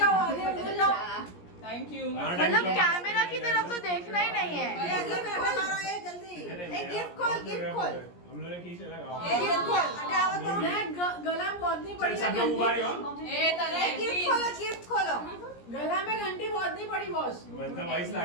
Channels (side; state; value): right; late; 17 ms